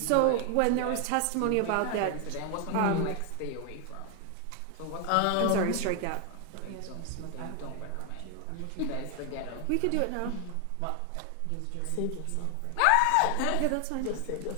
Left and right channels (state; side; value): different; both; correlation 0.00